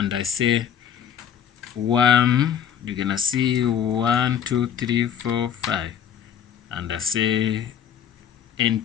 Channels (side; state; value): right; quieter; 9.0 dB